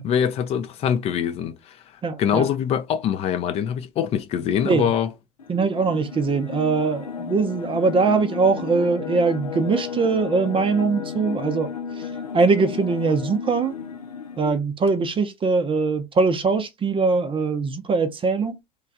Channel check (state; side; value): normal; both; correlation 0.47